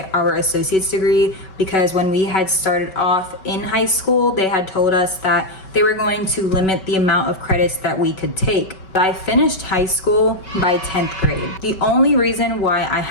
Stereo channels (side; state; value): right; late; 5.3 ms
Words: our associate's degree because when we had started off in high school, they had told us that they were going to limit the amount of credits that we could take. I finished high school by 10th grade. The only reason why I